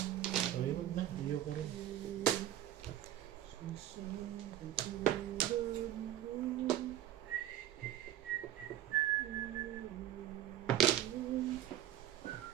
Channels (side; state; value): left; quieter; 12.2 dB